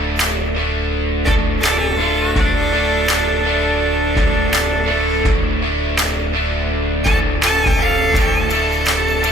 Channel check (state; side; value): normal; both; correlation 0.65